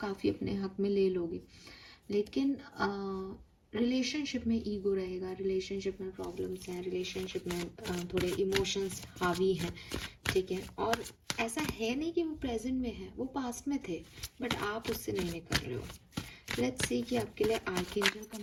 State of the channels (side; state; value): both; identical; correlation 1.00